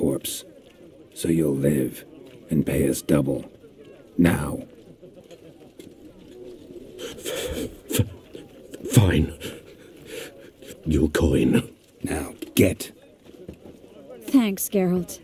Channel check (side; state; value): both; identical; correlation 1.00